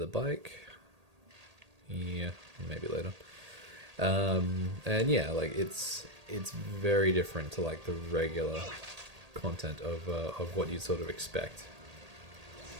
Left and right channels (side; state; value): left; late; 1.8 ms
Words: bike. Yeah, maybe later. And yeah, like it's very different to like the regular content of what you'd sort of expect.